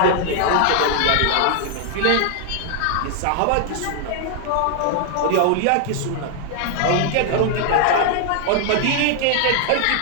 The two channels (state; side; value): different; both; correlation 0.00